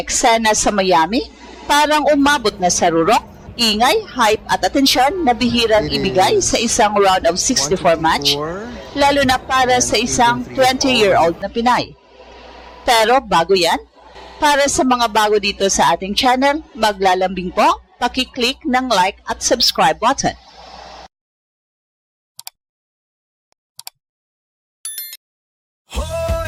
sa Miami parang umabot na sa rurok, ingay, hype at atensyon na bihirang ibigay sa isang round of 64 match, lalo na para sa isang 20-year-old na Pinay. Pero bago yan, para sa mga bago dito sa ating channel, maglalambing po, paki-click ng like at subscribe button.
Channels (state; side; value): identical; both; correlation 1.00